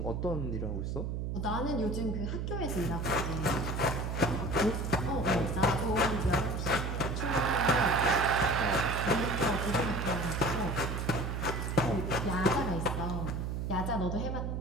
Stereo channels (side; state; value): right; noise; hum, 2 dB below the sound